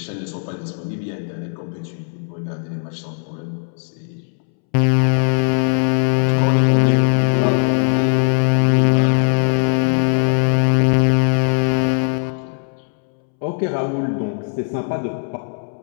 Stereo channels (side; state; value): right; silent; 67 dB below the other